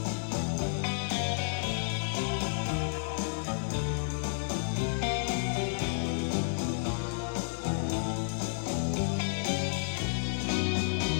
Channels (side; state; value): right; silent; 57 dB below the other